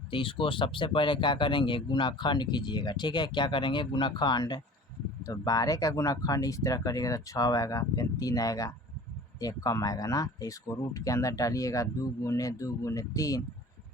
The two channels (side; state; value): both; normal; correlation 0.44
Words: तो इसको सबसे पहले क्या करेंगे, गुणाखंड कीजिएगा, ठीक है। क्या करेंगे, गुणाखंड। तो 12 का गुणाखंड इस तरह करिएगा तो 6 आएगा, फिर 3 आएगा, 1 कम आएगा ना। तो इसको रूट के अंदर डालिएगा, 2 गुने 2 गुने 3,